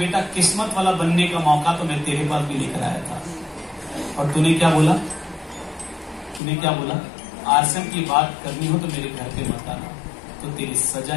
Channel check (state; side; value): drops out; right; at 6.4 s